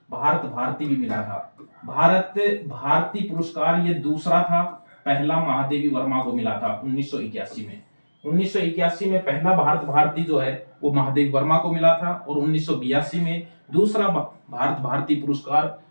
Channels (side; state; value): both; inverted; correlation -1.00